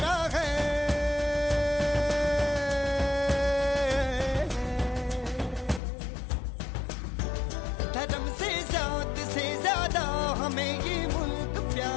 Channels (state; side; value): drops out; right; at 5.8 s